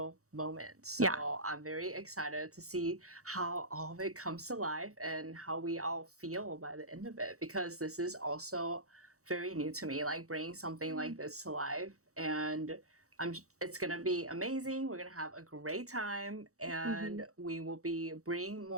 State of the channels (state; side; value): late; left; 0.65 ms